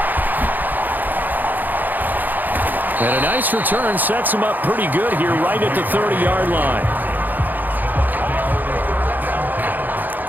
And a nice return sets him up pretty good here right at the 30-yard line.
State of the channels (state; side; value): late; left; 0.086 ms